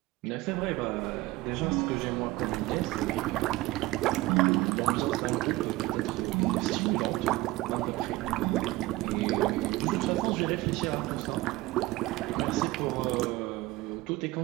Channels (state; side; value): quieter; left; 19.1 dB